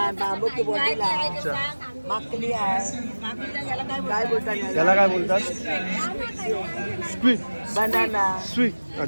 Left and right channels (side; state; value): both; inverted; correlation -1.00